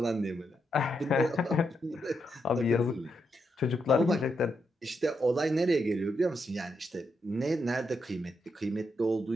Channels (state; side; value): normal; both; correlation 0.82